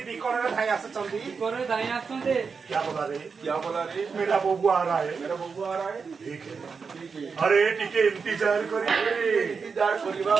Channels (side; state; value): left; quieter; 5.4 dB